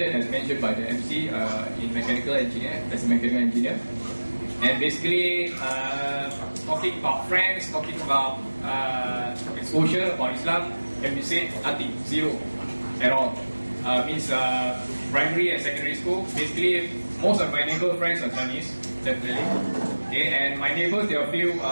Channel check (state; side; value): inverted; both; correlation -1.00